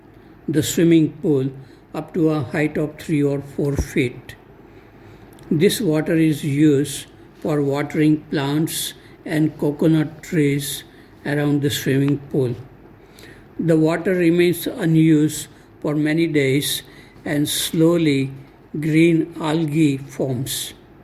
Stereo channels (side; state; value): both; identical; correlation 1.00